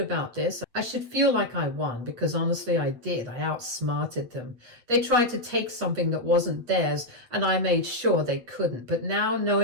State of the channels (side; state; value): left; late; 8.6 ms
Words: this. I should feel like I won, because honestly I did. I outsmarted them. They tried to take something that wasn't theirs, and I made sure they couldn't. But now,